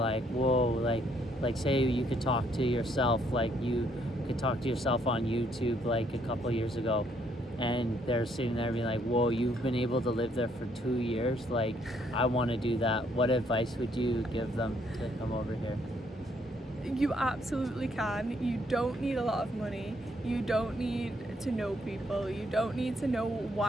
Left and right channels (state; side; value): normal; both; correlation 0.69